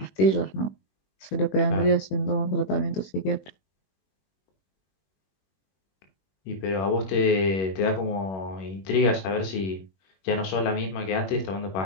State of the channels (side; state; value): right; late; 21 ms